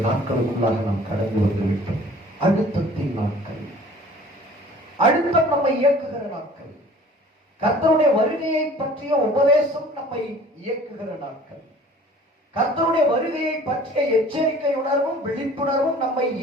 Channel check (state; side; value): normal; both; correlation 0.49